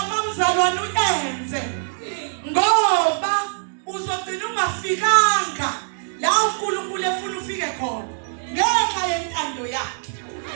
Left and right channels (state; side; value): silent; left; digital silence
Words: mzalwane uyenze ngoba uzogcina ungafikanga la uNkulunkulu efuna ufike khona ngenxa yentando yakhe